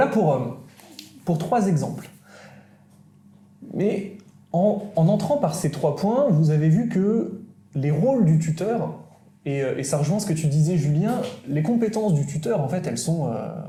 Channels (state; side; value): identical; both; correlation 1.00